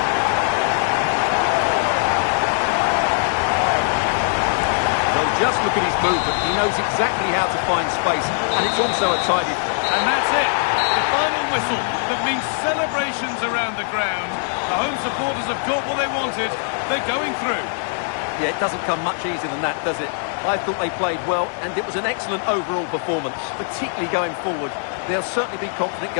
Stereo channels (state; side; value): silent; right; digital silence